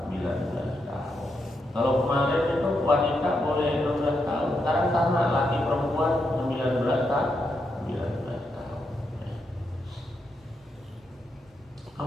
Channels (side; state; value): both; normal; correlation 0.82